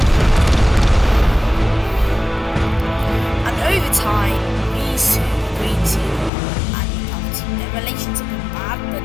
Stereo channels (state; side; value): drops out; right; at 6.3 s